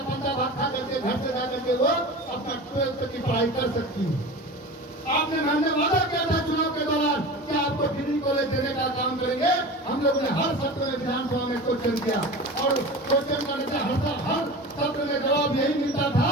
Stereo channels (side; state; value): both; normal; correlation 0.32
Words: बच्चा भाग खा करके घर से जाकर के वो अपना 12 तक की पढ़ाई कर सकती है। आपने हमने वादा किया था चुनाव के दौरान कि आपको डिग्री कॉलेज देने का काम करेंगे। हम लोगों ने हर सत्र में विधानसभा में क्वेश्चन किया, और क्वेश्चन करने से हर सत्र में जवाब यही मिलता था